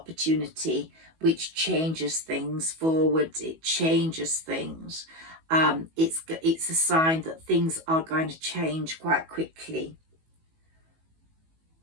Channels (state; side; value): late; left; 19 ms